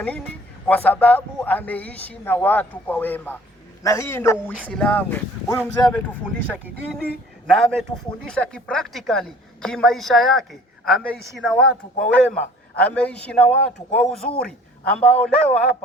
nini? Kwa sababu ameishi na watu kwa wema, na hii ndio Uislamu. Huyu mzee ametufundisha kidini na ametufundisha kipractically, kimaisha yake. Ameishi na watu kwa wema, ameishi na watu kwa uzuri, ambao leo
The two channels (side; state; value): both; normal; correlation 0.51